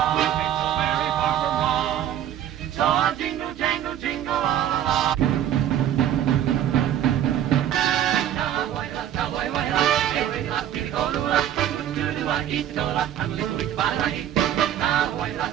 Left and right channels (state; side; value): quieter; left; 10.9 dB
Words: Ain't so very far from wrong. So I'll jingle, jangle, jingle all along. Cowboy,